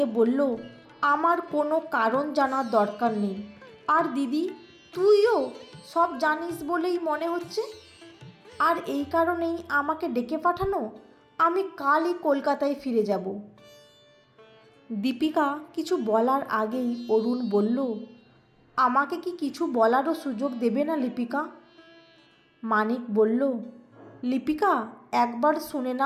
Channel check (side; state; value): both; identical; correlation 1.00